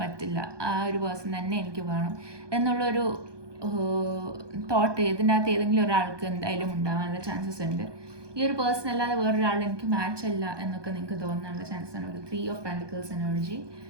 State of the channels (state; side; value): late; left; 1.2 ms